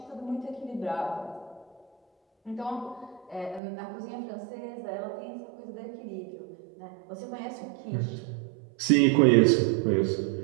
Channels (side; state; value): left; drops out; at 3.6 s